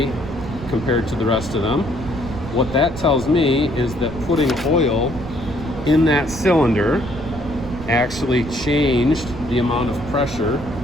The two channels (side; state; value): right; noise; rumble, 12 dB below the sound